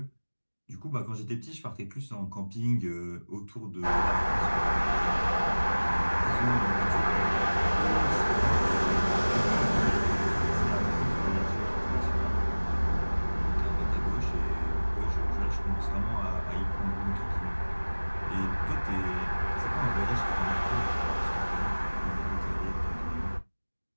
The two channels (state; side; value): inverted; both; correlation -1.00